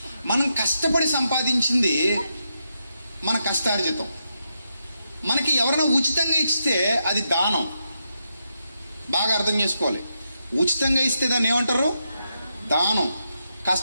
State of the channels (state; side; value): inverted; both; correlation -0.84